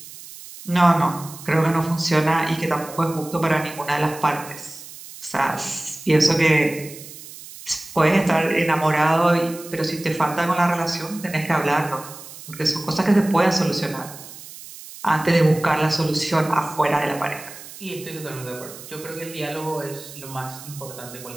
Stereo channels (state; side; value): noise; right; hiss, 15 dB below the sound